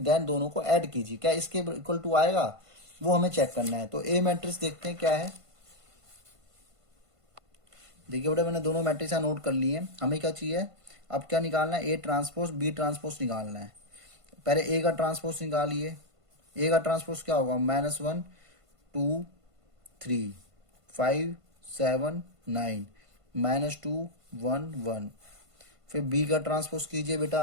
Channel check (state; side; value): late; left; 1.5 ms